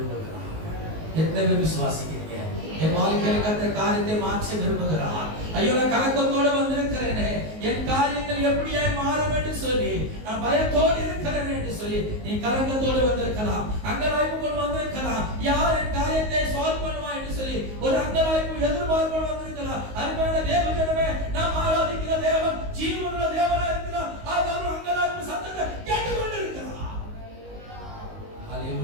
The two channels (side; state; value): left; late; 19 ms